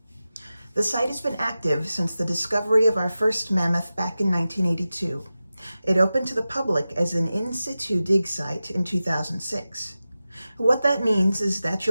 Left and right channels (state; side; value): inverted; both; correlation -0.94